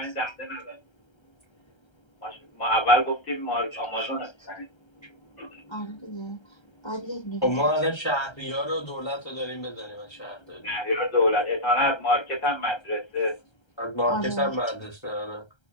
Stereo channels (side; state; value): right; late; 1.3 ms